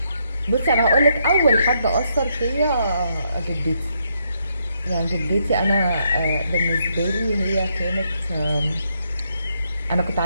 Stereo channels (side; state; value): both; inverted; correlation -0.76